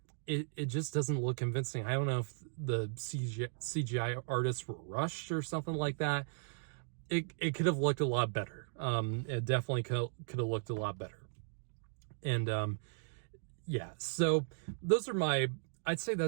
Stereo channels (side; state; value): left; silent; digital silence